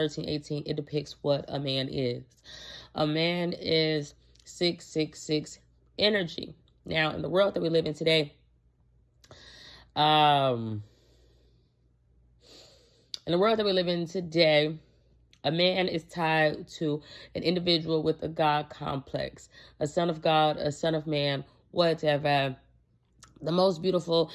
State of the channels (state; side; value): identical; both; correlation 1.00